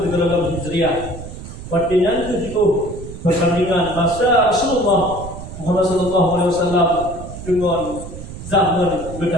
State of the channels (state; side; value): noise; right; rumble, 12 dB below the sound